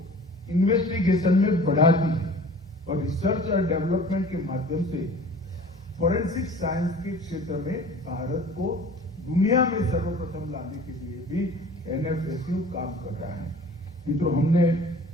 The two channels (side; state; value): both; normal; correlation 0.45